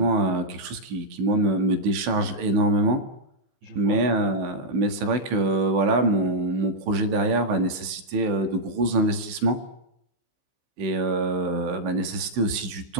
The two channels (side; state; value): left; late; 15 ms